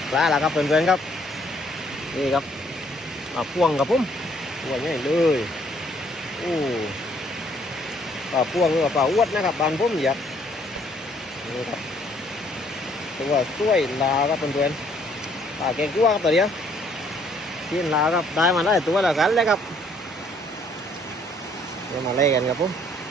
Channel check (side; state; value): both; normal; correlation 0.64